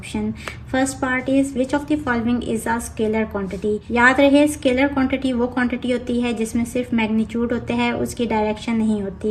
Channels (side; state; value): both; identical; correlation 1.00